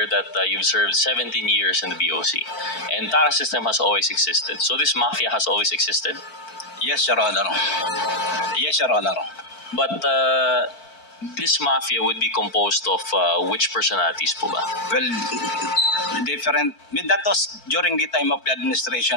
that you've served 17 years in the BOC. And TARA system has always existed. So this mafia has always existed? Yes, Your Honor. Yes, Your Honor. But this mafia would be composed of which personalities po ba? Well, different. That was during the time of the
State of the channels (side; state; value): right; late; 4.5 ms